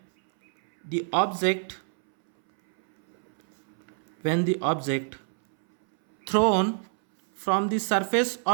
the object thrown from the surface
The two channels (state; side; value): silent; left; 60 dB below the other